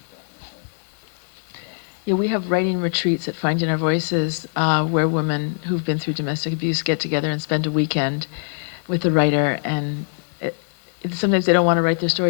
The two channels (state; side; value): silent; right; digital silence